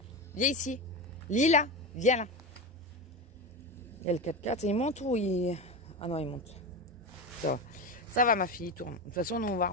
viens ici. Lila, viens là. Il y a le 4x4, il monte ou il... Ah non il monte. Ça va ma fille, il tourne. De toute façon nous on va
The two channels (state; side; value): normal; both; correlation 0.20